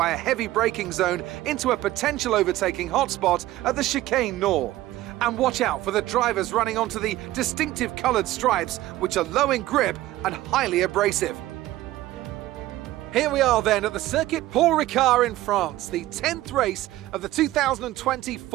a heavy braking zone into a potential overtaking hotspot at the Chicane Nord. And watch out for the drivers running onto the distinctive coloured stripes, which are low in grip and highly abrasive. Here we are then at the Circuit Paul Ricard in France, the 10th race of the 2020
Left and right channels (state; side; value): quieter; left; 15.9 dB